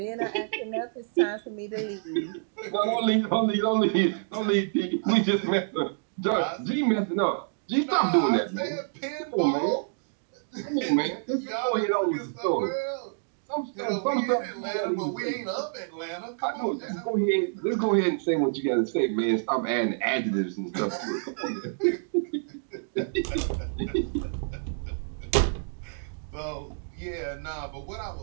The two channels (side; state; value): left; silent; digital silence